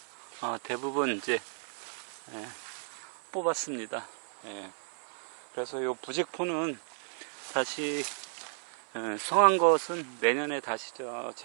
대부분 이제 뽑았습니다. 그래서 요 부직포는 다시 성한 것은 내년에 다시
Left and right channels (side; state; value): left; silent; 56 dB below the other